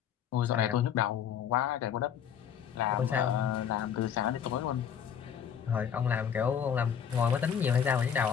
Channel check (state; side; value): quieter; right; 8.3 dB